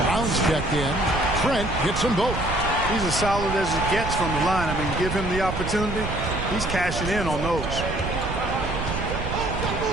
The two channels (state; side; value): noise; right; rumble, 5 dB below the sound